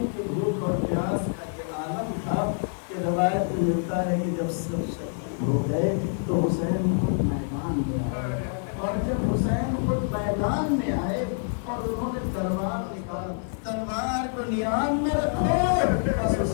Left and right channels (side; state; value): right; silent; digital silence